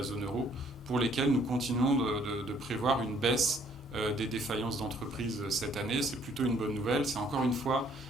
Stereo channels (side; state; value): both; normal; correlation 0.63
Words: zone euro pour lesquels nous continuons de prévoir une baisse des défaillances d'entreprises cette année. C'est plutôt une bonne nouvelle. C'est encore une fois,